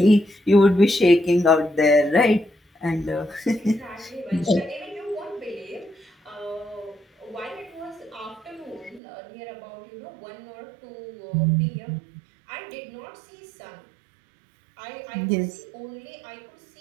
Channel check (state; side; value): drops out; left; at 9.0 s